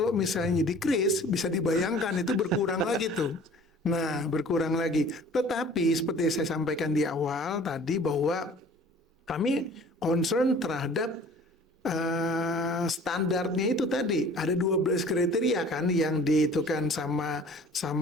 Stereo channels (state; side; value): normal; both; correlation 0.48